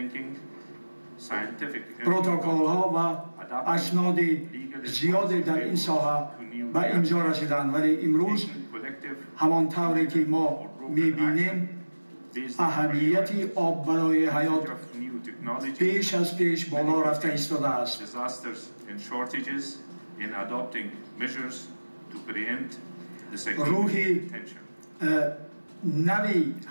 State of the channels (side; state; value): both; inverted; correlation -1.00